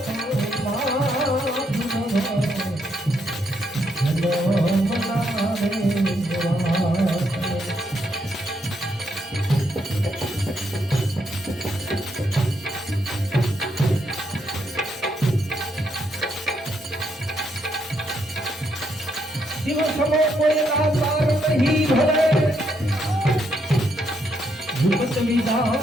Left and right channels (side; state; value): both; normal; correlation 0.76